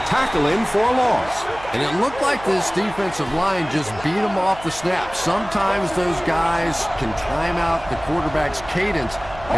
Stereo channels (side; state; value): right; noise; hum, 17 dB below the sound